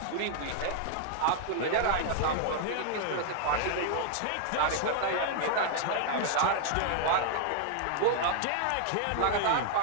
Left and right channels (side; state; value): both; different; correlation 0.00